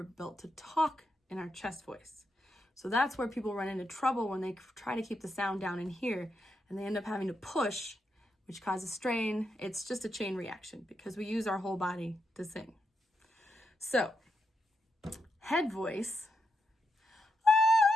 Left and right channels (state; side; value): normal; both; correlation 0.83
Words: built to talk in our chest voice. So that's where people run into trouble when they try to keep the sound down in here and they end up having to push, which causes strain. It's just a chain reaction because we use our whole body to sing. So, head voice,